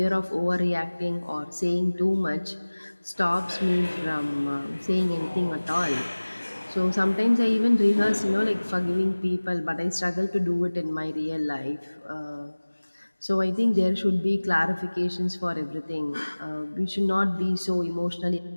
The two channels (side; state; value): both; inverted; correlation -1.00